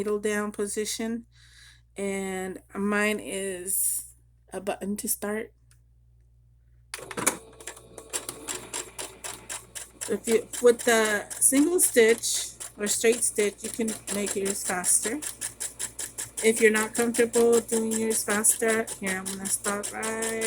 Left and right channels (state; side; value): identical; both; correlation 1.00